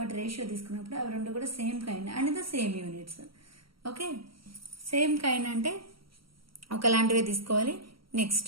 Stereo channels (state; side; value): late; left; 0.74 ms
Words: అవి రెండు కూడా same kind and the same units. Okay, same kind అంటే ఒకలాంటివే తీసుకోవాలి.